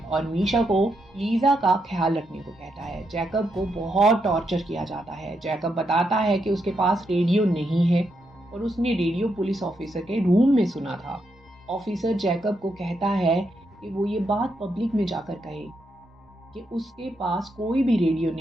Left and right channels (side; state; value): both; normal; correlation 0.81